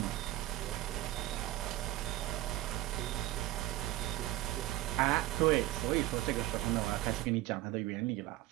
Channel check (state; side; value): quieter; left; 16.0 dB